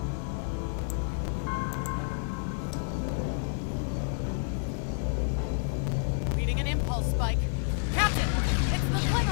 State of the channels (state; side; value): silent; right; digital silence